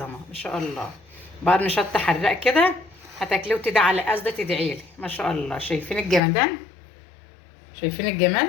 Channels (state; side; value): drops out; right; at 6.2 s